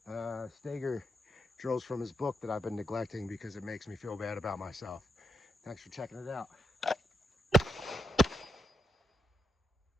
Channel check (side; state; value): both; normal; correlation 0.83